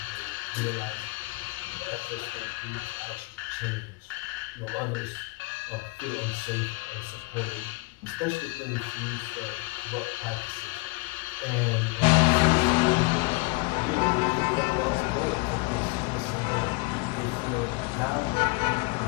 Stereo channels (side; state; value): right; quieter; 26.3 dB